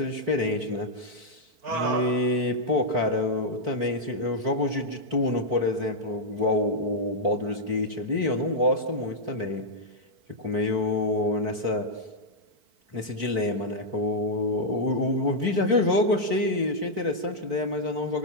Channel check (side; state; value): left; late; 4.5 ms